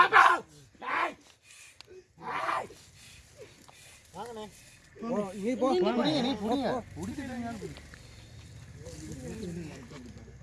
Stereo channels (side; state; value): both; identical; correlation 1.00